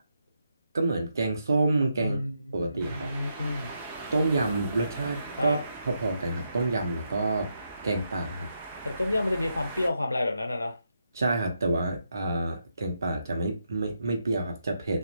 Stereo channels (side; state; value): both; inverted; correlation -0.81